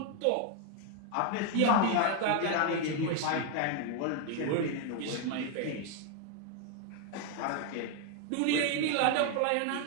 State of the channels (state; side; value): different; both; correlation 0.01